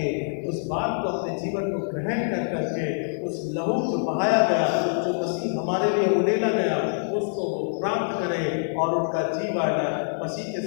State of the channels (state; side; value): silent; right; digital silence